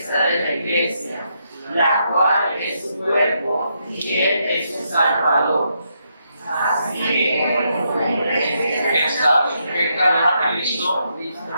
de la iglesia, la cual es su cuerpo y Él es su Salvador. Así como la iglesia está sujeta a Cristo,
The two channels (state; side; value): inverted; both; correlation -0.79